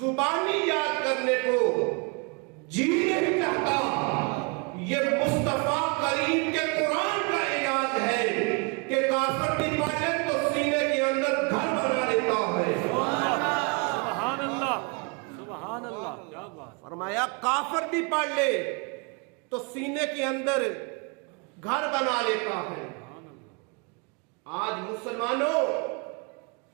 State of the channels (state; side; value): quieter; left; 32.7 dB